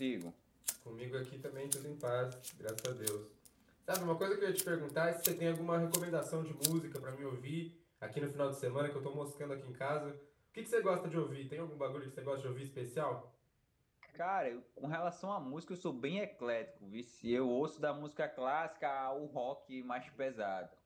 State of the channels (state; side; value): identical; both; correlation 1.00